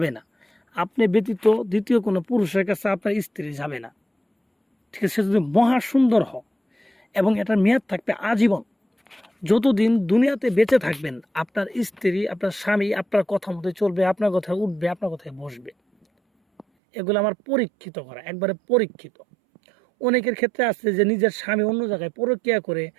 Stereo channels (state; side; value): drops out; left; at 16.7 s